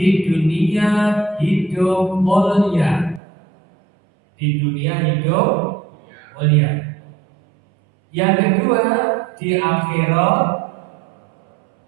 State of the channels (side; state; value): left; drops out; at 3.2 s